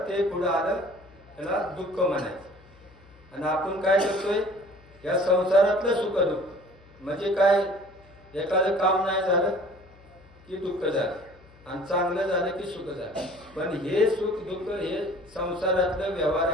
ते पुढे आलं त्याला दुःख म्हणायचं. आणि आपण काय करतोय, या संसारातलं सुख दुःख म्हणजे काय, एखादं काम नाही झालं की दुःख झालं आणि चांगलं झालं की सुख झालं. पण हे सुख दुःख हे संसारातलं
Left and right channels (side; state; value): left; noise; hum, 25 dB below the sound